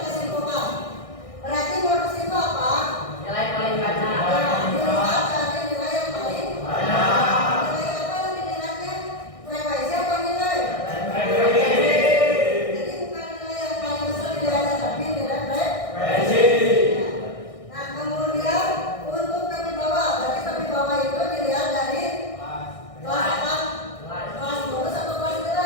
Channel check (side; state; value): right; late; 1.6 ms